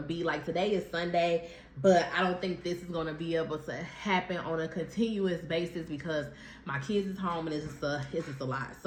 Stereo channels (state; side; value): identical; both; correlation 1.00